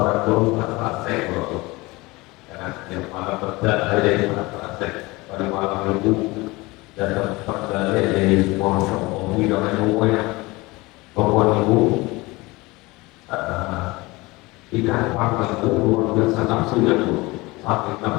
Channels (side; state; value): right; quieter; 22.5 dB